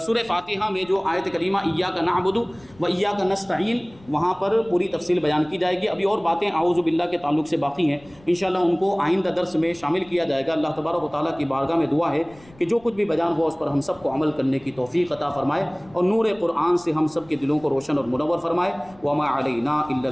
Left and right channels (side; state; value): left; noise; rumble, 26 dB below the sound